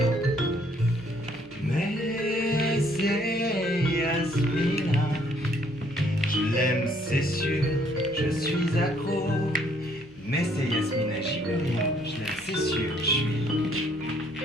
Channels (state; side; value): noise; left; hum, 25 dB below the sound